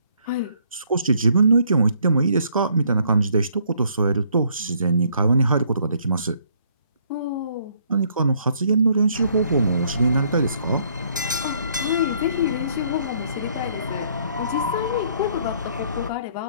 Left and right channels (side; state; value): both; inverted; correlation -0.66